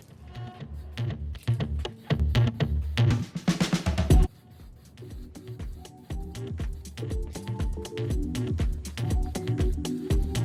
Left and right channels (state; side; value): identical; both; correlation 1.00